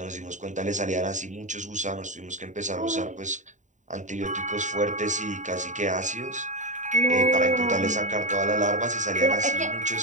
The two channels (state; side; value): late; left; 0.36 ms